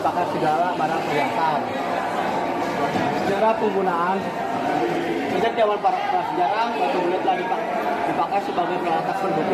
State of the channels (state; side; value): identical; both; correlation 1.00